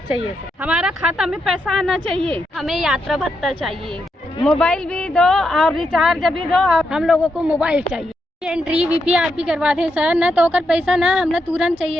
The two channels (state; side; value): normal; both; correlation 0.82